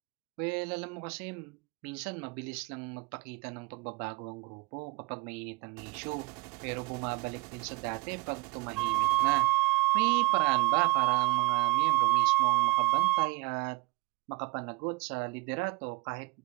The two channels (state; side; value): quieter; left; 22.9 dB